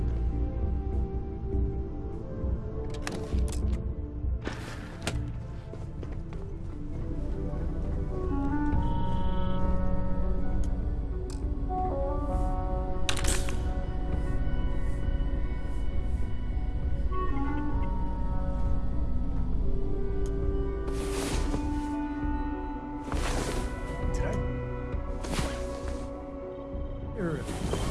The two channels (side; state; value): both; identical; correlation 1.00